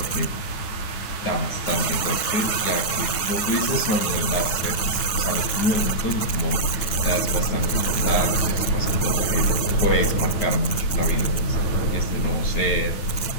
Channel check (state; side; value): late; right; 9.8 ms